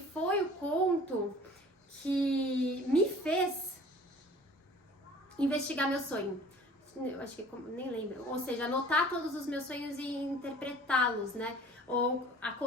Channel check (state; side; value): normal; both; correlation 0.47